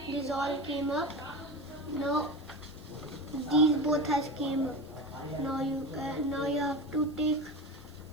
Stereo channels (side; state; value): right; noise; hiss, 30 dB below the sound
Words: up. Now these both has came up. Now you have to take